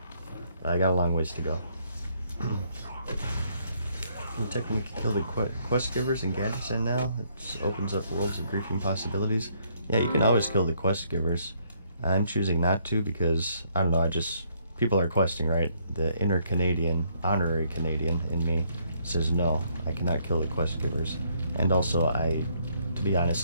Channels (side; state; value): both; inverted; correlation -0.69